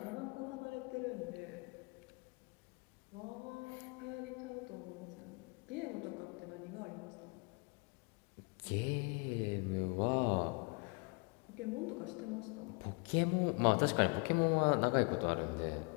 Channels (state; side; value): quieter; right; 32.8 dB